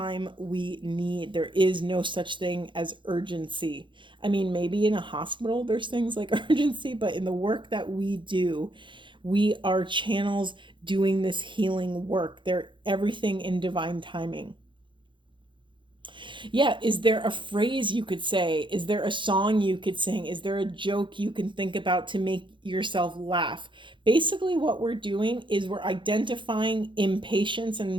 we need. There is no such thing as urgency. I mean, maybe in a hospital there's things like urgency, but in the work that we do, we are channels doing this healing work. They're everything in divine timing. Yeah, is there a phrase you could say? Is there a song you could sing? Is there a joke you can think about to make yourself laugh? Basically, what we're doing is we're identifying impatience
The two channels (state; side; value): late; left; 0.23 ms